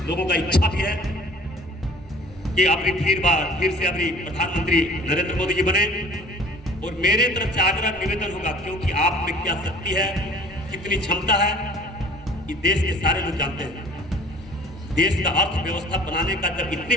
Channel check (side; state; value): both; normal; correlation 0.49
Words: लोगों का इच्छा भी है कि अपनी फिर से अपनी प्रधानमंत्री नरेंद्र मोदी जी बने। और मेरे तरफ से आग्रह निवेदन होगा, क्योंकि आप में क्या शक्ति है, कितनी क्षमता है, ये देश के सारे लोग जानते हैं। देश का अर्थव्यवस्था बनाने का जब इतनी